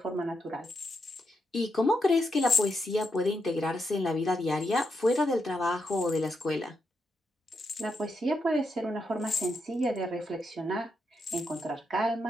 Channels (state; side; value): normal; both; correlation 0.83